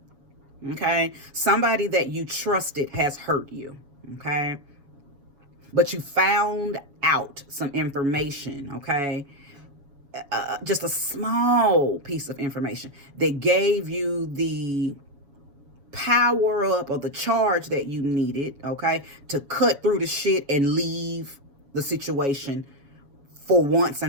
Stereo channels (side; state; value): left; late; 7.1 ms